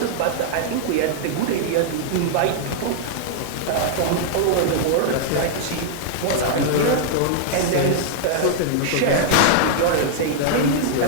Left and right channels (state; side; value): different; both; correlation -0.01